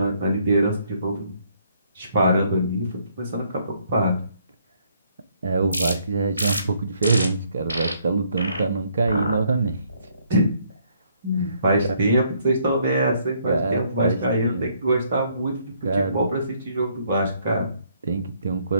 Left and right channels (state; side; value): inverted; both; correlation -0.68